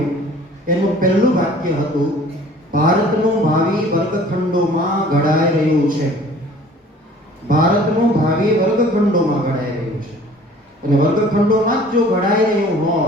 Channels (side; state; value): both; normal; correlation 0.50